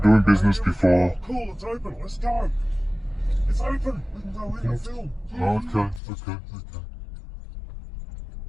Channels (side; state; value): right; drops out; at 6.0 s